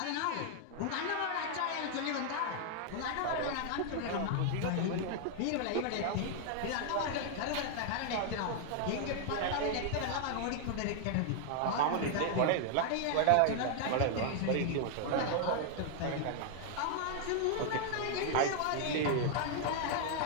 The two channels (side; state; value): both; different; correlation 0.00